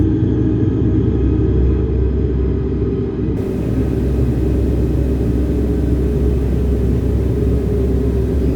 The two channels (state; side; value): identical; both; correlation 1.00